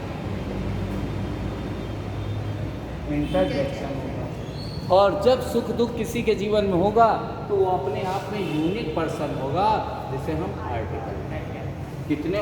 इंटरजेक्शन होगा। और जब सुख दुख किसी के जीवन में होगा तो वो अपने आप में यूनिक पर्सन होगा, जिसे हम आर्टिकल। कितने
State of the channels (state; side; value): identical; both; correlation 1.00